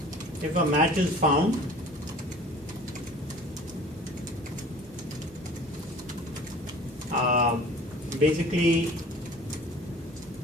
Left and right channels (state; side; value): normal; both; correlation 0.46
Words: if a match is found, basically